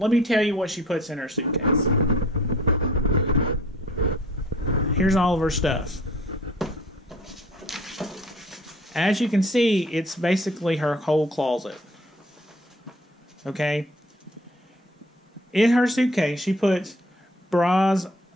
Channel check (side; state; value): both; normal; correlation 0.52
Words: me tell you what she puts in her suitcase. Here's all of her stuff. As you can see, it's basically her whole closet. Okay? In her suitcase, she puts bras